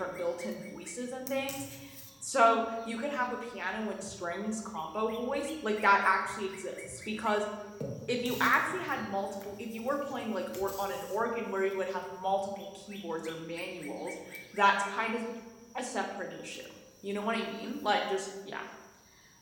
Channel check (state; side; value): identical; both; correlation 1.00